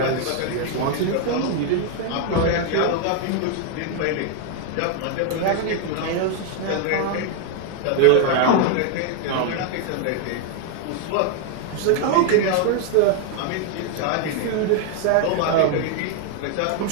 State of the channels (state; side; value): different; both; correlation 0.00